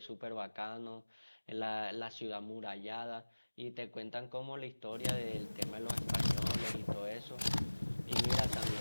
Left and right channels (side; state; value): both; inverted; correlation -1.00